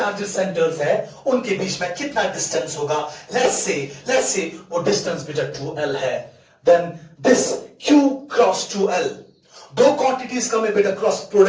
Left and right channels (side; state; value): both; identical; correlation 1.00